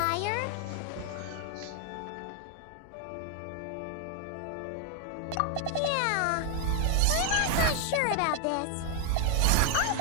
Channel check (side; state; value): both; different; correlation 0.00